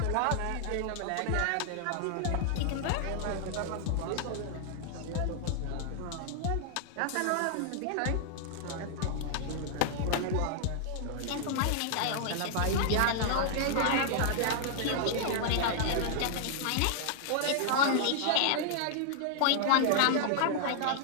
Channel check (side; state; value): both; different; correlation -0.01